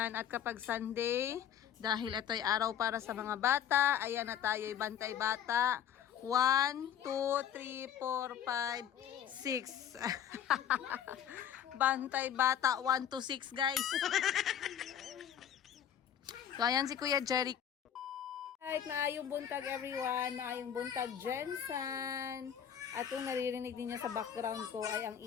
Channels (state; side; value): quieter; right; 9.3 dB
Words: At kapag Sunday, dahil ito'y araw para sa mga bata, ayan na tayo'y bantay bata. 1, 2, 3, 4, 5, 6. Bantay bata 1 to 6 guys. So ayan si Kuya Jerry. Right, maayong buntag everyone, maayong buntag Jensen. At kung naririnig niyo sa background ko ay ang